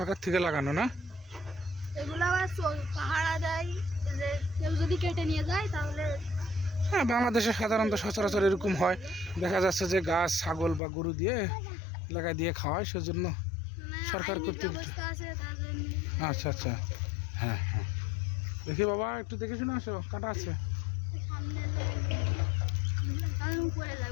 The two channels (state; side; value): drops out; right; at 10.8 s